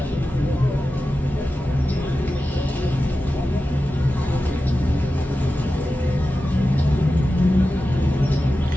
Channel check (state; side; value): normal; both; correlation 0.93